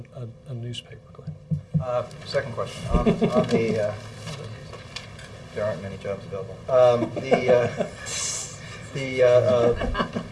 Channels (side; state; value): both; identical; correlation 1.00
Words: newspaper, Glenn. Second question. On the there aren't many jobs available. On